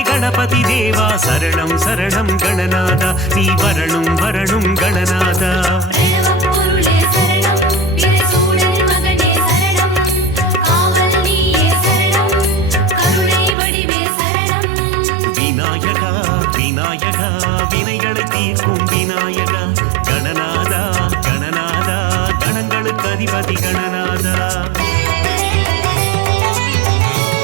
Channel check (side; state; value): left; drops out; at 13.6 s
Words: கணபதி தேவா சரணம் சரணம் கணநாதா நீ வரணும் வரணும் கணநாதா பிரணவப் பொருளே சரணம் பிரசூடன் மகனே சரணம் காவல் நீயே சரணம் கருணை வடிவே சரணம் விநாயகா விநாயகா வினைகளை தீர்க்கும் விநாயகா கணநாதா கணநாதா கணங்களுக்கு அதிபதி கணநாதா